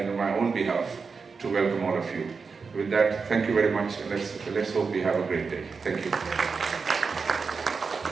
on my own behalf to welcome all of you. With that, thank you very much, and let's hope we have a great day. Thank you.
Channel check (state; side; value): quieter; left; 5.0 dB